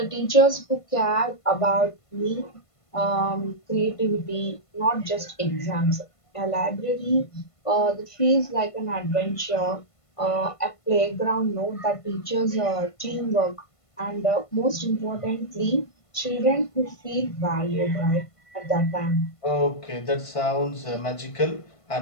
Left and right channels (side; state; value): right; late; 1.5 ms